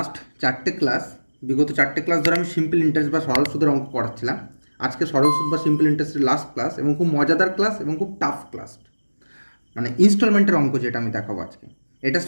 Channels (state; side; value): inverted; both; correlation -1.00